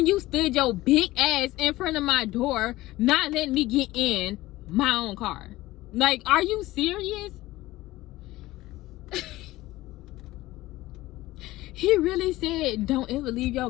you stood your big ass in front of my door, not letting me get in my own car? Like, are you serious? He really said don't ever leave your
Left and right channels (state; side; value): quieter; right; 17.7 dB